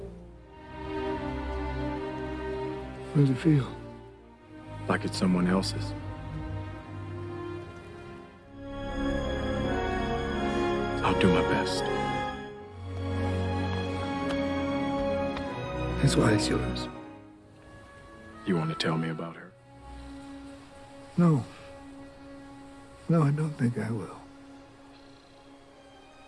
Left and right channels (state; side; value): identical; both; correlation 1.00